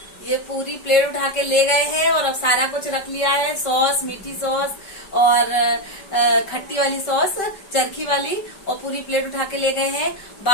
ये पूरी प्लेट उठा के ले गए हैं। और अब सारा कुछ रख लिया है, सॉस, मीठी सॉस और खट्टी वाली सॉस, चरखी वाली, और पूरी प्लेट उठा के ले गए हैं।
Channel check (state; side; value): late; right; 5.2 ms